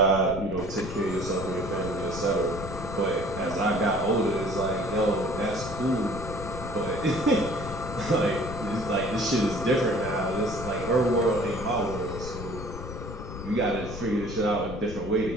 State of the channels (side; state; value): left; noise; rumble, 9 dB below the sound